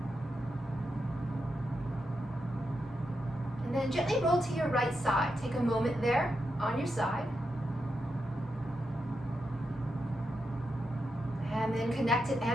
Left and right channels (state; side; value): normal; both; correlation 0.86